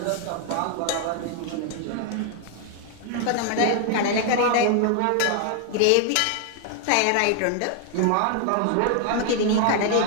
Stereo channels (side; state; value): both; different; correlation 0.00